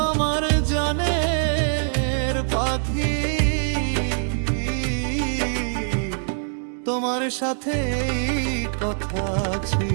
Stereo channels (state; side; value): silent; left; digital silence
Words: আমার জানের পাখি। তোমার সাথে এই কথা